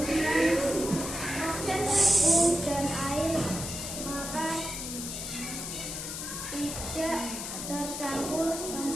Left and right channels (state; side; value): noise; left; hiss, 6 dB below the sound